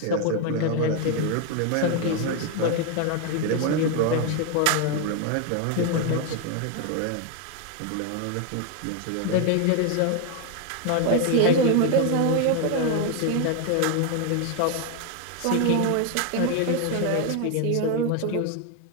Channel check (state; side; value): different; both; correlation 0.01